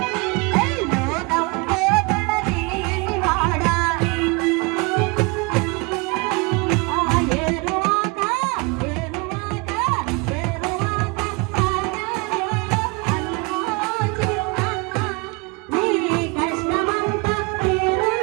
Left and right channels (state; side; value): quieter; left; 28.7 dB